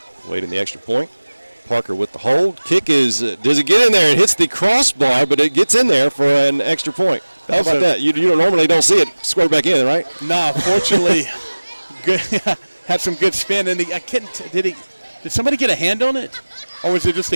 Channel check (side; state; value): both; inverted; correlation -1.00